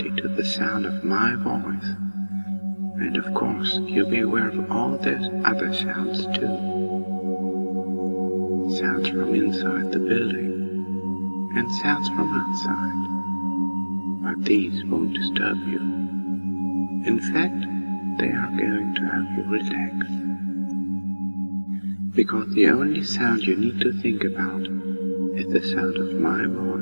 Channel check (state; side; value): inverted; both; correlation -1.00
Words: to the sound of my voice, and of course you'll be aware of all those other sounds too. Sounds from inside the building, and sounds from outside, but these won't disturb you. In fact, they are going to help you relax. Because the only sound you need to think about is the sound of my